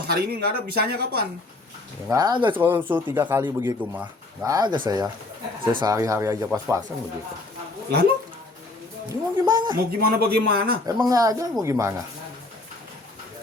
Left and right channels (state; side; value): quieter; right; 3.0 dB